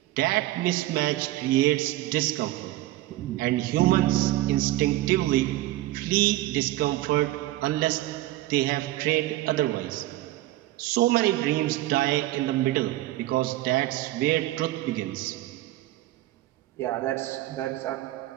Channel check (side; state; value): left; quieter; 16.4 dB